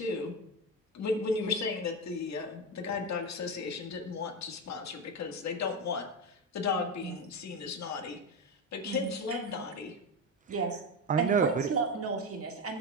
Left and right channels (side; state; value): both; normal; correlation 0.14